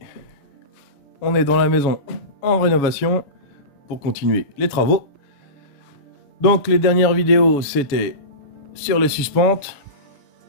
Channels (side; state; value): right; late; 7.1 ms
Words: on est dans la maison en rénovation pour continuer les travaux. Donc les dernières vidéos, c'était sur les suspentes.